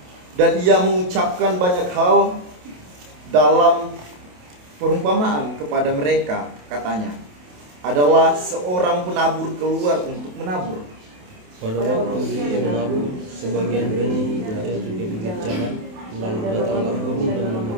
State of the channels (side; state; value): left; late; 28 ms